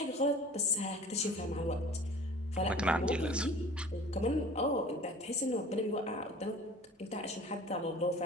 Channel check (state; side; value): normal; both; correlation 0.45